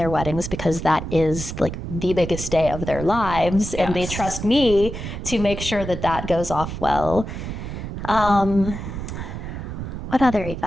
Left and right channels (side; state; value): right; noise; rumble, 7 dB below the sound